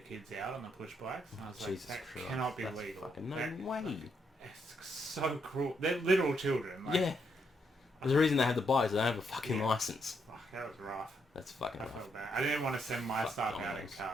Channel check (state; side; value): normal; both; correlation 0.77